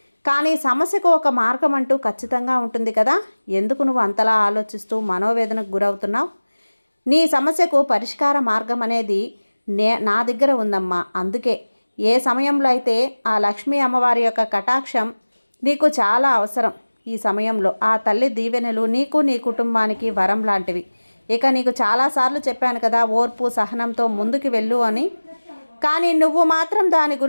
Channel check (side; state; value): both; inverted; correlation -1.00